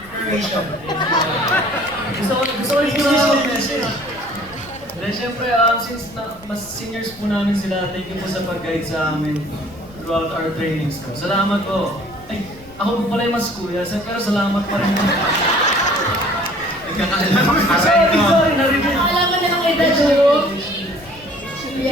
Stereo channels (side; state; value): left; noise; rumble, 22 dB below the sound